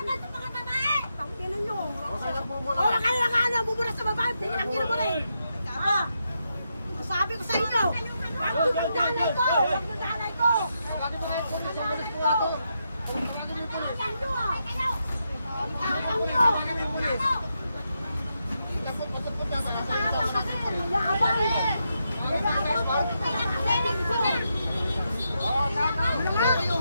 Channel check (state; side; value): inverted; both; correlation -0.83